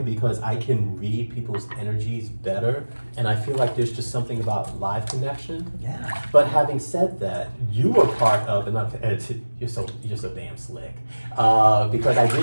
because I can read people's energies better, and I feel like there's just something about live connection. Yeah. But having said that, you were part of, you're so damn slick, because I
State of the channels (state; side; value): inverted; both; correlation -1.00